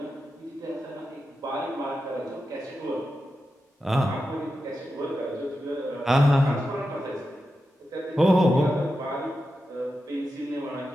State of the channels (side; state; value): both; normal; correlation 0.90